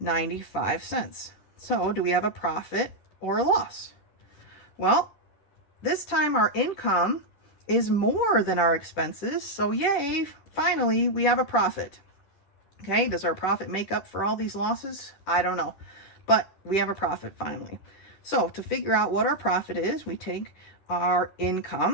So do we have a profit or a loss? Well, this time our income is more than our expenses, so yay, finally we have a profit. Okay, does our profit make up for all these losses? I don't know, but we have a profit finally. So to figure out what our profit is, we take our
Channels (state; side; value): late; right; 10 ms